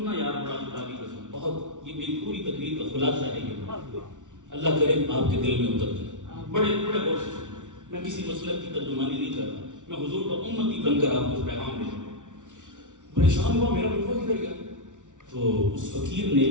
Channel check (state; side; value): late; left; 0.87 ms